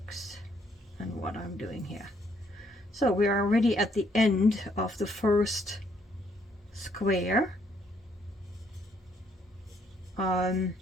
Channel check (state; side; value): normal; both; correlation 0.69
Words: and what I'm doing here. So we are already at the end of the first square.